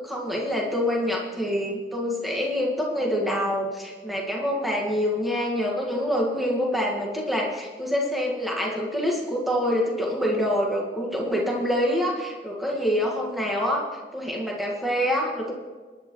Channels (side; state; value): both; normal; correlation 0.56